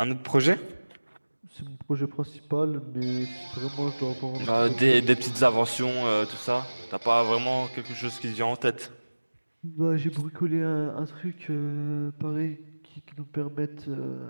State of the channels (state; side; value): inverted; both; correlation -1.00